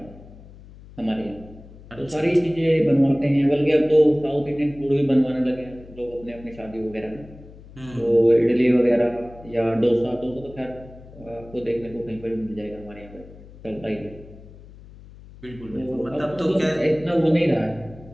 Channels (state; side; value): noise; left; hum, 19 dB below the sound